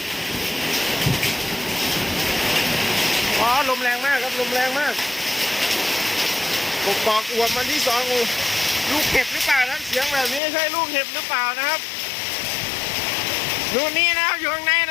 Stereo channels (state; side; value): drops out; right; at 10.4 s